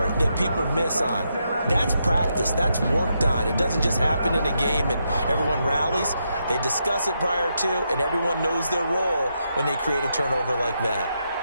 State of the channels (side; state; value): both; inverted; correlation -0.82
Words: that people miss on. That's practice. That's worked on. It doesn't just happen in a game and everyone rallies. They discuss it prior to, and everyone knows their role when they create a turnover like that.